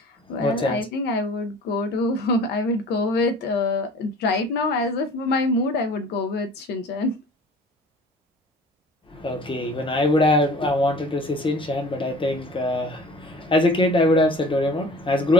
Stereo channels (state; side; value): normal; both; correlation 0.45